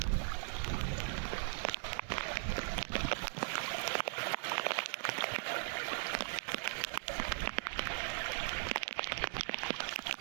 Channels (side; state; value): left; silent; 52 dB below the other